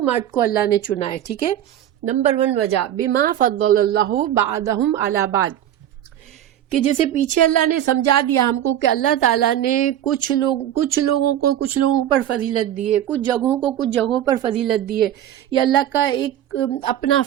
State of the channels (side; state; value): left; quieter; 11.4 dB